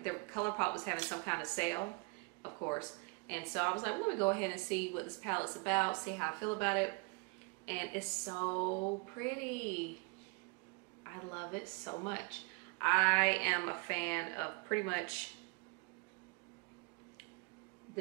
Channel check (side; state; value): left; quieter; 31.2 dB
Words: was having some kind of sale, of course. And so I was like, well, let me go ahead and see what this palette's about, see how I feel about it. And it's so pretty. I love it so much. I am a fan of pretty much